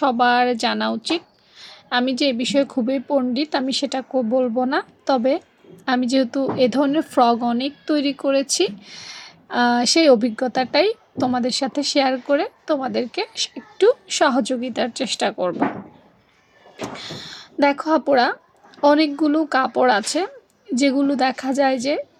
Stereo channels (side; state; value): both; identical; correlation 1.00